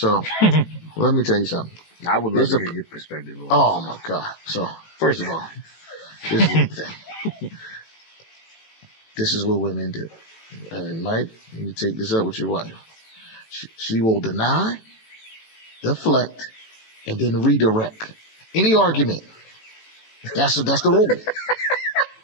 let me tell you something. I would love to hear your perspective. Oh my God! So first of all, this is the thing. This is what women do. And Mike, you take this up with your wife. She will deny, deflect, and then redirect. Any argument. That's the rule.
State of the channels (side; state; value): right; late; 18 ms